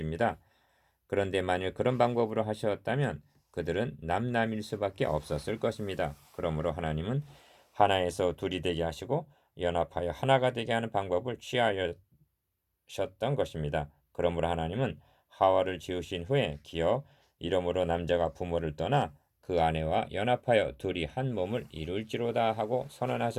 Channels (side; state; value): both; identical; correlation 1.00